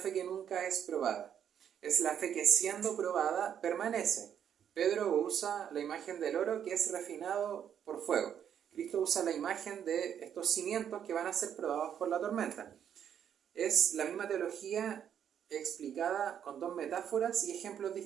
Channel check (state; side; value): quieter; left; 9.0 dB